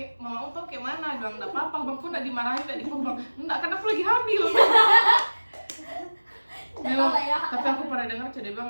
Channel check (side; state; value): both; inverted; correlation -1.00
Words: mama tau kayak mana, bilang nggak apa-apa bang, kok nggak dimarahin, nggak dipukul, enggak kan aku lagi hamil. Memang, tapi aku pernah dengar dia bilang